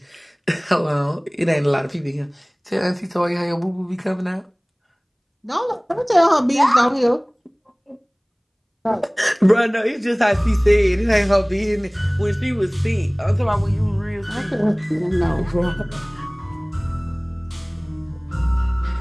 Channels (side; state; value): both; identical; correlation 1.00